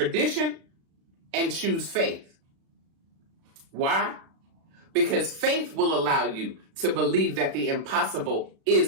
and choose faith. Why? Because faith will allow you to believe that the impossible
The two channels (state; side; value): late; left; 36 ms